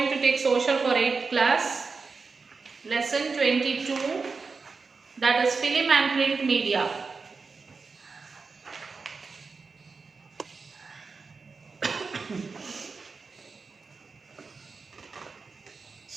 to take social for 8th class, lesson 22, that is film and print media.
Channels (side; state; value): left; quieter; 4.6 dB